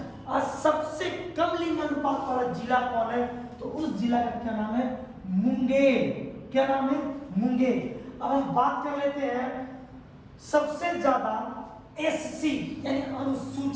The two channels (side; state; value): both; identical; correlation 1.00